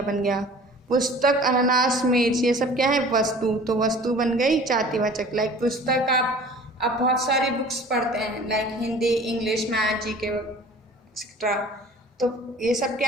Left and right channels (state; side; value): normal; both; correlation 0.45